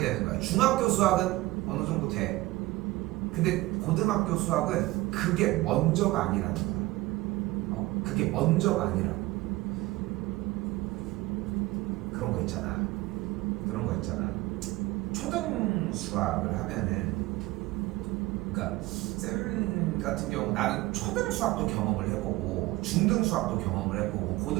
거야. 중학교 수학은 어느 정도 돼. 근데 고등학교 수학은 그게 먼저가 아니라는 거야. 그게 먼저가 아니라고. 그런 거 있잖아. 초등 수학을 하면은, 그러니까 쌤 같은 경우 나는 초등 수학도 경험을 해보고 중등 수학도 경험을 해보고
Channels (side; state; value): left; quieter; 19.4 dB